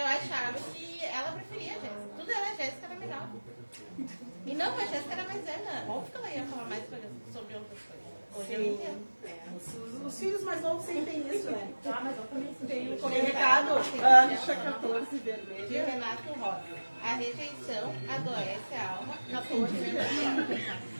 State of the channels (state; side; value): inverted; both; correlation -1.00